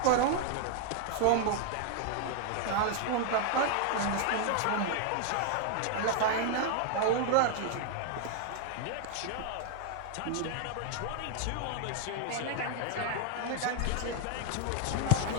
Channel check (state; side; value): different; both; correlation 0.00